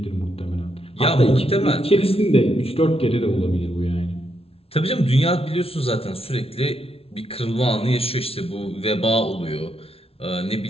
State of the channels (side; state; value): right; late; 0.28 ms